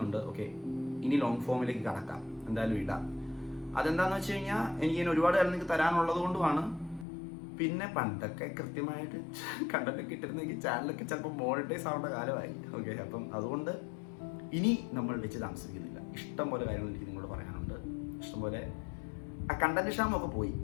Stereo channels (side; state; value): right; drops out; at 7.1 s